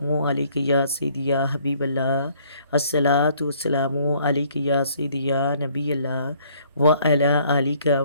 علیک یا سیدی یا حبیب اللہ، الصلاۃ والسلام علیک یا سیدی یا نبی اللہ وعلی آلک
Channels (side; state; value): both; inverted; correlation -0.62